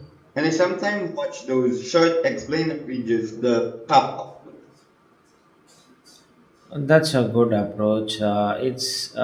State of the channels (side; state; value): both; identical; correlation 1.00